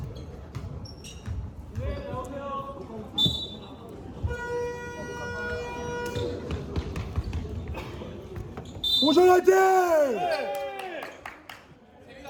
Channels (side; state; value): both; identical; correlation 1.00